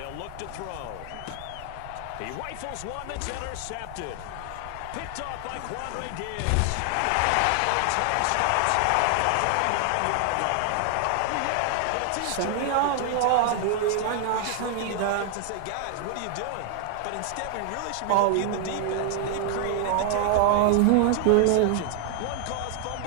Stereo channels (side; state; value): both; different; correlation 0.00